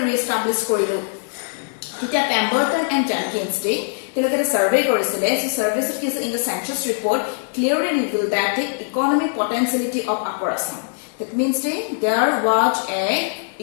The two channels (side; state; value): right; silent; digital silence